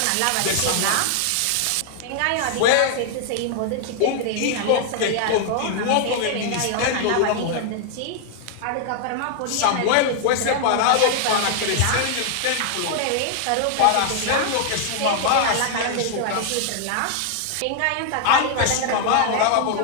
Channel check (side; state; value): both; different; correlation 0.00